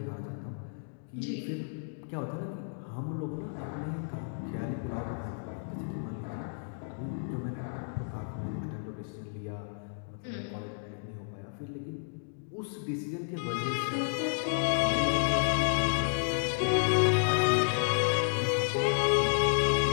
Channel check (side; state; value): right; silent; digital silence